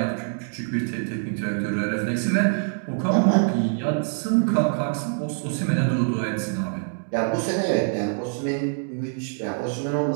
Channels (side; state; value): left; silent; 62 dB below the other